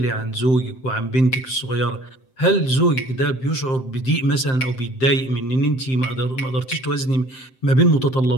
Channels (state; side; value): late; right; 7.7 ms